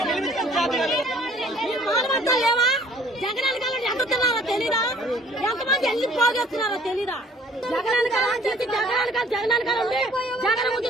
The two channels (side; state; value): both; normal; correlation 0.56